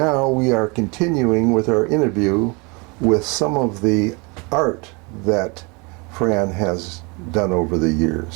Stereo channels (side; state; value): left; quieter; 29.4 dB